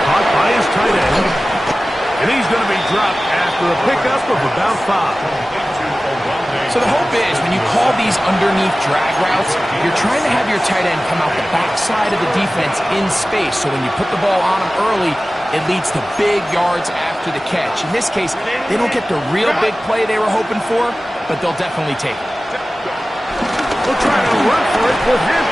caught by his tight end. And he's going to be dropped after a pickup of about 5. So the hope is, when you call these underneath drag routes, you're trying to have your tight end come out the backside of the defense in space. So when you put the ball on him early, it leads to big yards after the catch. In this case, they don't get the real big play they were hoping for, but they'll definitely take it. We'll try to run for it with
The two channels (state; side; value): normal; both; correlation 0.96